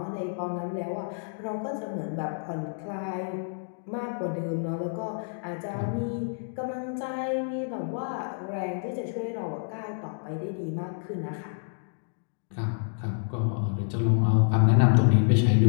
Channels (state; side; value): silent; right; digital silence